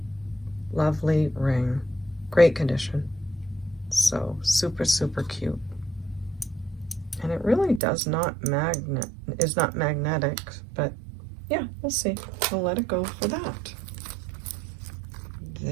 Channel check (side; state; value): left; drops out; at 7.8 s